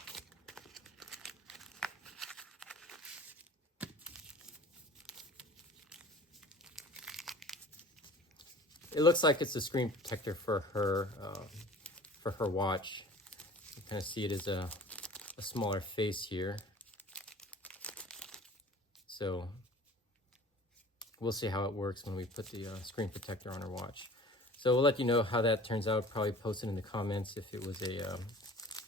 It looks like it's a screen protector for her watch. You kind of see it as a smaller face here. So we'll see how it works when we put the screen protector on our watch. So we'll let you know how that turns out. Probably post it in the comments if it was a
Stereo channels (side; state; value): both; normal; correlation 0.44